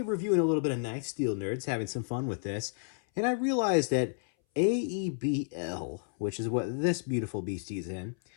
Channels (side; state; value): right; silent; 57 dB below the other